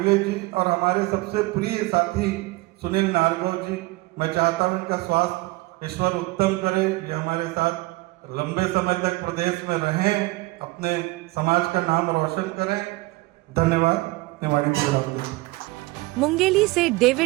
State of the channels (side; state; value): left; quieter; 21.6 dB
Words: जी और हमारे सबसे प्रिय साथी सुनील नारगव जी। मैं चाहता हूं उनका स्वास्थ्य ईश्वर उत्तम करे, ये हमारे साथ लंबे समय तक प्रदेश में रहें, अपने समाज का नाम रोशन करें। धन्यवाद। निवाड़ी मुंगेली से